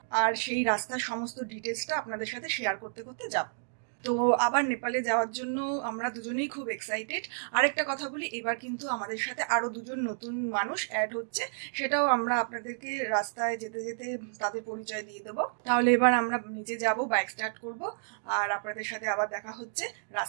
আর সেই রাস্তার সমস্ত ডিটেলসটা আপনাদের সাথে শেয়ার করতে করতে যাব। তো আবার নেপালে যাওয়ার জন্য আমরা দুজনেই খুব এক্সাইটেড। আরেকটা কথা বলি, এবার কিন্তু আমাদের সাথে আরো দুজন নতুন মানুষ অ্যাড হচ্ছে, সেটাও আমরা আপনাদেরকে রাস্তায় যেতে যেতে তাদের পরিচয় দিয়ে দেবো। তাহলে এবার আমরা নিচে যাব, বাইক স্টার্ট করব, আর আপনাদের সাথে আবার দেখা হচ্ছে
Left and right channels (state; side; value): silent; left; digital silence